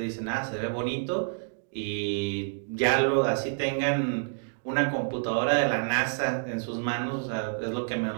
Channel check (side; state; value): left; silent; digital silence